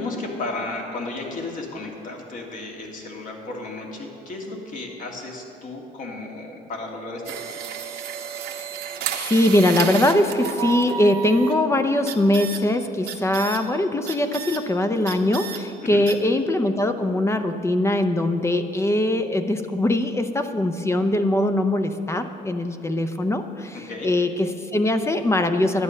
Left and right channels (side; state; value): both; normal; correlation 0.73